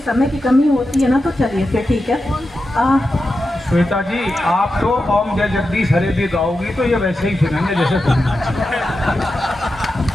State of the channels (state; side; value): normal; both; correlation 0.90